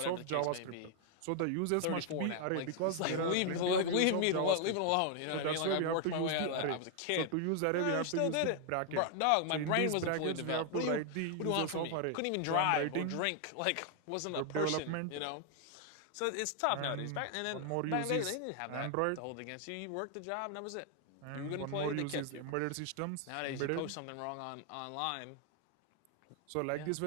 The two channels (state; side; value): different; both; correlation 0.00